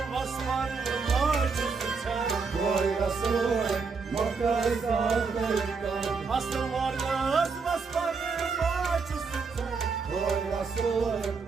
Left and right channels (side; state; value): left; quieter; 4.9 dB